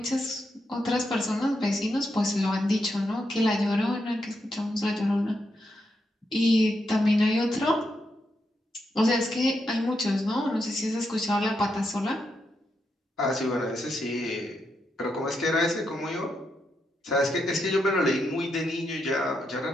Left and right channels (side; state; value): both; normal; correlation 0.82